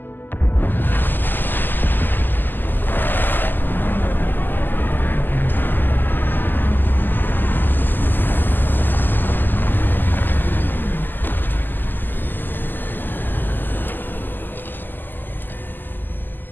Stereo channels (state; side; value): late; right; 0.090 ms